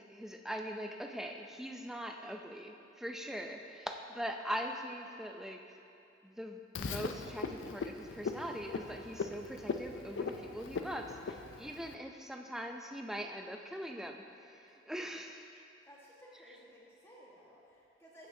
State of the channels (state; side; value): normal; both; correlation 0.54